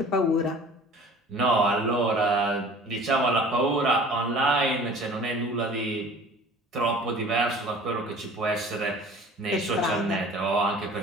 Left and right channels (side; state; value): both; normal; correlation 0.46